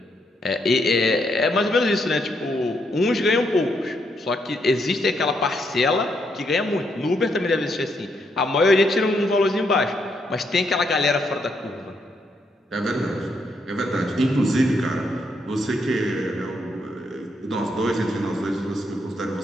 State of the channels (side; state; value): both; normal; correlation 0.77